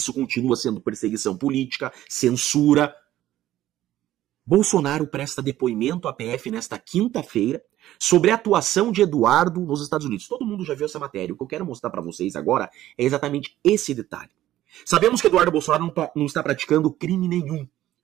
continua sendo perseguição política, censura. Bolsonaro presta depoimento à PF nesta quinta-feira sobre a atuação de Eduardo nos Estados Unidos. Todo mundo já viu essa matéria. O que eu quero mostrar para vocês agora é exatamente esse detalhe. Sabemos que Eduardo Bolsonaro não está praticando crime nenhum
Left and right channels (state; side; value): quieter; left; 13.8 dB